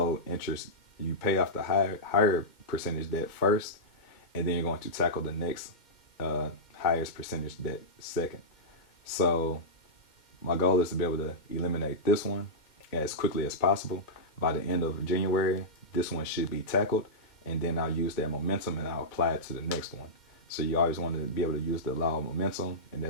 interest, you pay off the higher percentage debt first, and then you're going to tackle the next highest percentage debt second. So my goal is to be able to eliminate this one as quickly as possible. By the end of January, this one should be tackled, and then I'll use that momentum and I'll apply it to the next one. So you always want to be able to use the law of momentum, and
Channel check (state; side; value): late; right; 2.1 ms